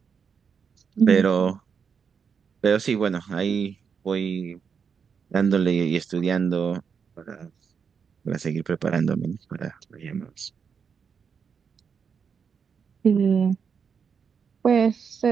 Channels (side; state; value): left; quieter; 6.4 dB